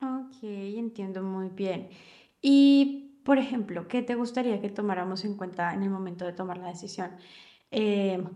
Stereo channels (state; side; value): identical; both; correlation 1.00